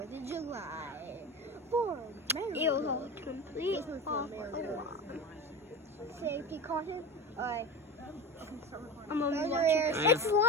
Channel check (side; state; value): both; normal; correlation 0.26